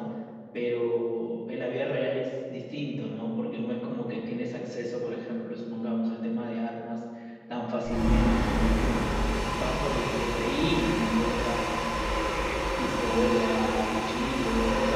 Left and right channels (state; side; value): identical; both; correlation 1.00